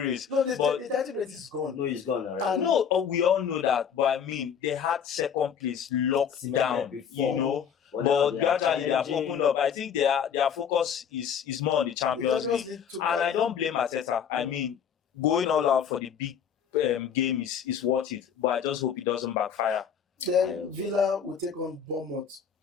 No, the title race is gone. No, it's gone already. We all know that, but I mean, they had second place locked down before. But gradually they have opened up. I think their focus is more on the Champions League. And I don't blame Arteta. I mean, going all out for the big game is worth it. But I just hope it doesn't backfire. Then Villa will take on Bournemouth.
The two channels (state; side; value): quieter; right; 7.7 dB